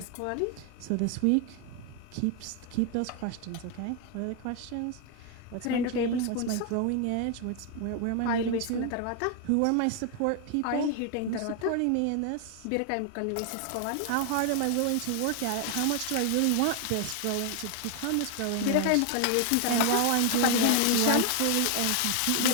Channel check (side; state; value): both; different; correlation 0.01